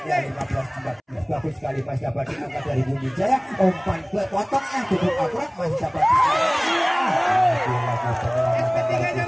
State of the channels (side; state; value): both; identical; correlation 1.00